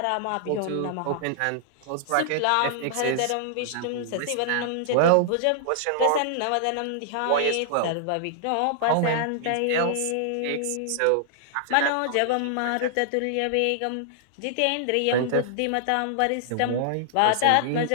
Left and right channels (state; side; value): different; both; correlation -0.01